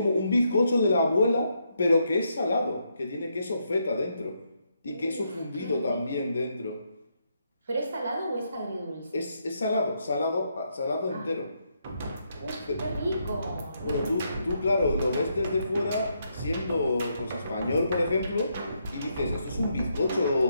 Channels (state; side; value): inverted; both; correlation -0.78